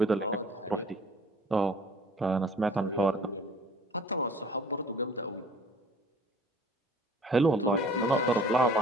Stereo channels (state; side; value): normal; both; correlation 0.52